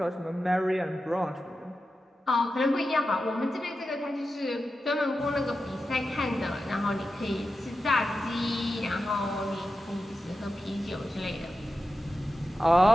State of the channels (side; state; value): both; normal; correlation 0.91